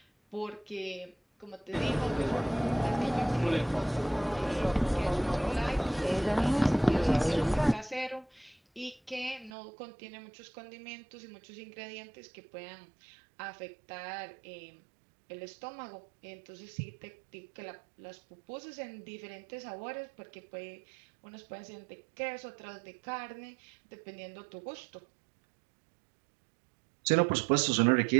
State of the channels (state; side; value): drops out; left; at 9.5 s